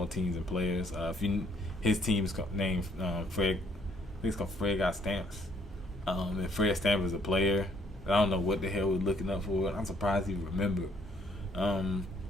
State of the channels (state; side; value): normal; both; correlation 0.66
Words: teams and players. His team's named Fred. I think it's called Fred Got Stamps. And Fred Stamp is a player. I don't know what the hell we're looking up for. I'm surprised he remembered.